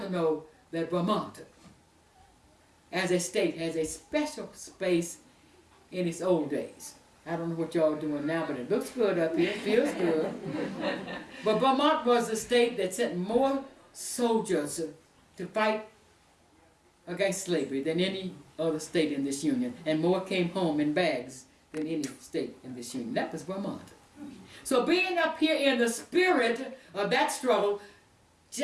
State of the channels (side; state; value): both; identical; correlation 1.00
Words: know that Vermont as a state has a special space in its old days. I don't know what y'all are doing now, but it looks good up here, it feels good. But Vermont was a state that sent more soldiers to fight against slavery than any other state in this union, and more came home in bags than any state in this union. That was Vermont. So being up here in the spirit of that struggle,